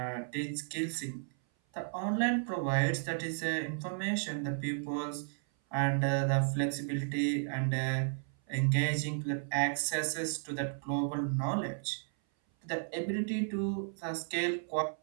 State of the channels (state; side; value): silent; left; 55 dB below the other